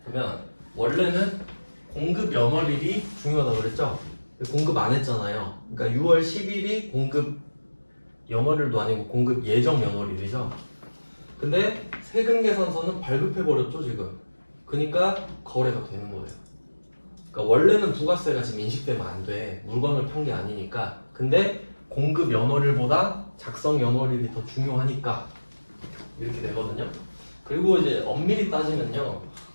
그러면 원래는 공급 연월일이 중요하다고 그랬죠? 공급 안 했잖아요. 그러니까 6월 10일이 공급 연월일도 아니고 공급 예정 연월일이죠. 근데 세금 계산서는 발급해버렸죠 지금. 그러니까 거래가 되는 거예요. 그러니까 원래는 부가세가 지금 인식되면 안 돼. 물건을 판 게 아니니까. 근데 공급 연월일보다 작성 연월일이 더 중요하니까 이렇게 되거든요. 그리고 이제 엄밀히 따지면요,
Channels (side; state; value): both; inverted; correlation -1.00